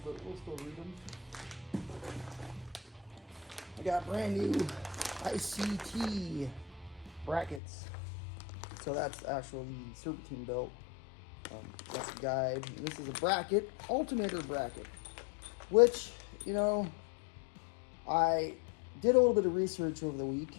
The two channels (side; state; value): right; drops out; at 7.6 s